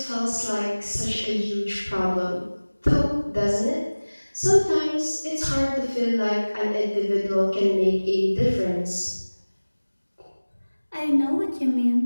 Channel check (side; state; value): both; inverted; correlation -1.00